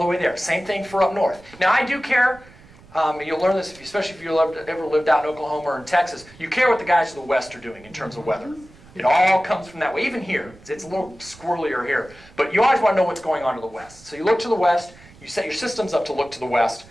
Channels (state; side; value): noise; right; rumble, 24 dB below the sound